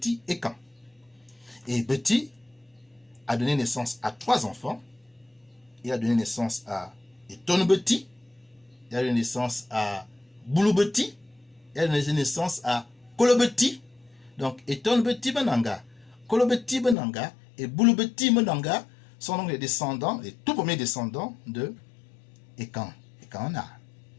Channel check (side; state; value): right; drops out; at 16.9 s